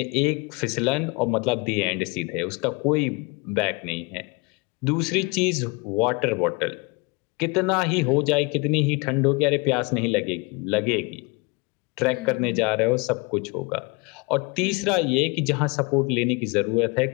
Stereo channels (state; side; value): quieter; right; 28.1 dB